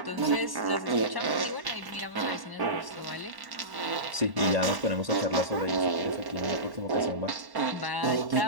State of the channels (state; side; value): late; left; 1.1 ms